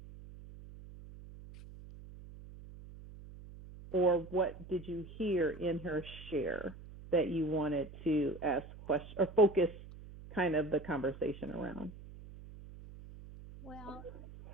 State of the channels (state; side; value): noise; right; hum, 16 dB below the sound